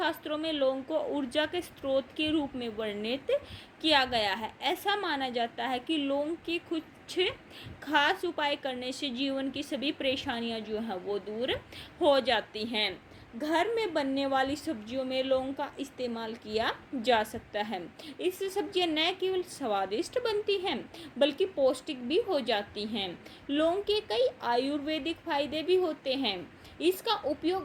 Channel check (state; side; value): identical; both; correlation 1.00